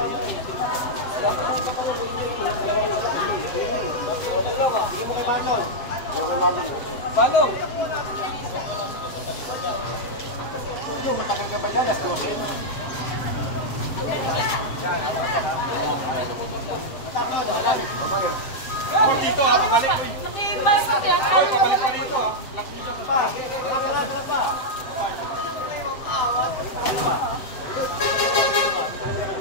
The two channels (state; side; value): late; right; 7.7 ms